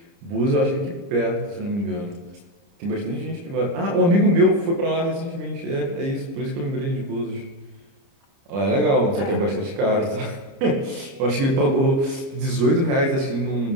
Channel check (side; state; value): left; late; 30 ms